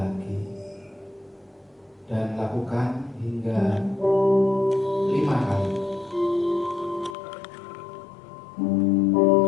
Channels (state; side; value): drops out; right; at 7.2 s